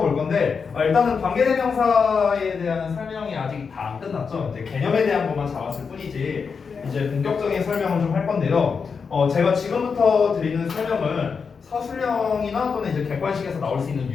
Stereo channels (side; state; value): right; quieter; 5.6 dB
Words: 볼 건데 일단은 관계대명사에 대한 설명이 아직 다 안 끝났죠. 이제 개념에 대한 것만 잡았을 뿐이지 이제 본격적인 설명을 좀 할 건데요. 제가 지금부터 드리는 설명은 서술형이나 또는 이제 객관식에서 나올 수 있는